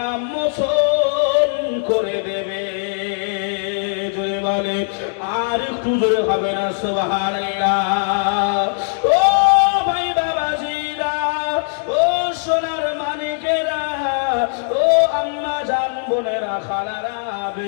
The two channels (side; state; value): right; silent; digital silence